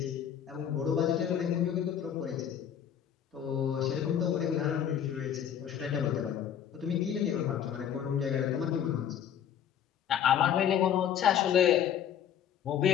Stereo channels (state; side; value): quieter; right; 9.3 dB